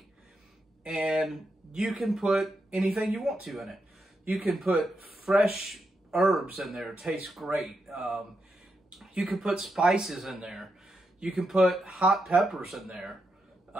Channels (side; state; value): both; normal; correlation 0.84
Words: and you can put anything you want to in it. You can put fresh herbs in there, it tastes great. You can put spices in there. You can put hot peppers in there.